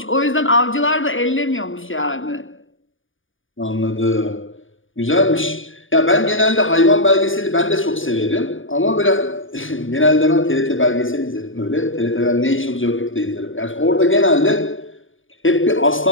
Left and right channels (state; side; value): late; right; 0.57 ms